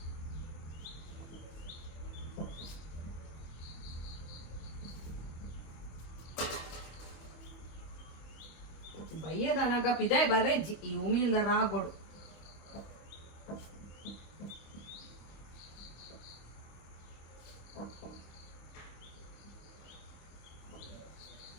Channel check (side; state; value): right; late; 25 ms